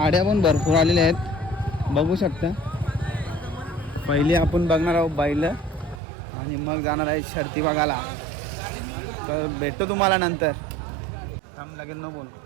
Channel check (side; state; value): left; drops out; at 6.0 s